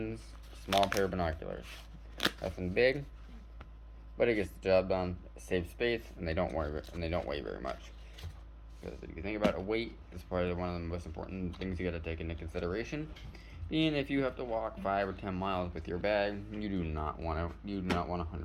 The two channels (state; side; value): identical; both; correlation 1.00